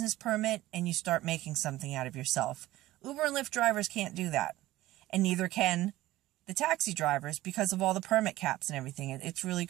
permit, and you start making something out of yourself. Uber and Lyft drivers can't do that. And neither can the taxi drivers because of all the permit caps and everything. It's really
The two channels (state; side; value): quieter; left; 16.4 dB